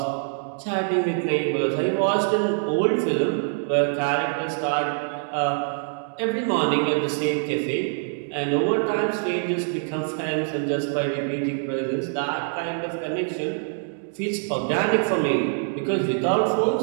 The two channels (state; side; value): silent; left; digital silence